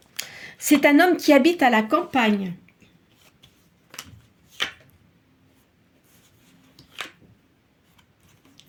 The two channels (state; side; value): identical; both; correlation 1.00